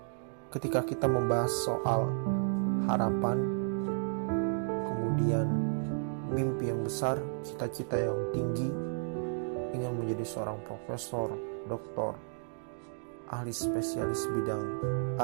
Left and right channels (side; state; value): left; silent; digital silence